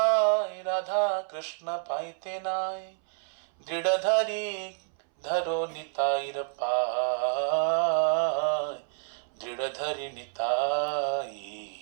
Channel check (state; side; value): silent; left; 59 dB below the other